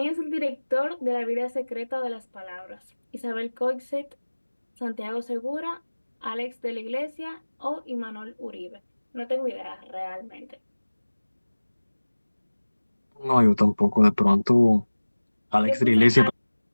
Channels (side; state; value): both; inverted; correlation -1.00